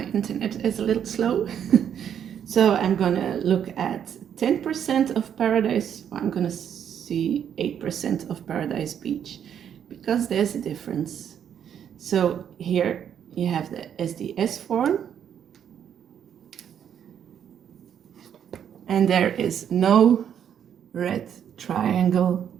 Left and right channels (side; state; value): left; quieter; 8.9 dB